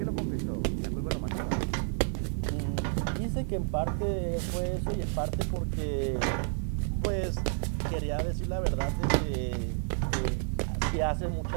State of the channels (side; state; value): left; silent; 57 dB below the other